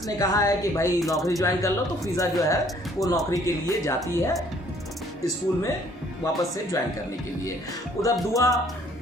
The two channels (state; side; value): normal; both; correlation 0.60